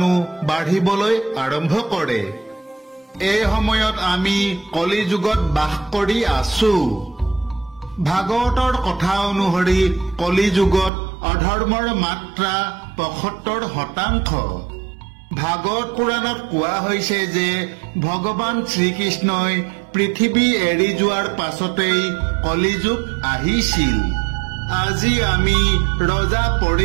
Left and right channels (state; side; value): drops out; left; at 10.9 s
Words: বাঢ়িবলৈ আৰম্ভ কৰে। এই সময়ত আমি কলি যুগত বাস কৰি আছো। ভাগৱতৰ কথা অনুসৰি কলি যুগত অধৰ্মৰ মাত্ৰা 75%। ভাগৱত পুৰাণত কোৱা হৈছে যে ভগৱান শ্ৰীকৃষ্ণই পৃথিৱী এৰি যোৱাৰ পাছতেই কলি যুগ আহিছিল। আজি আমি ৰজা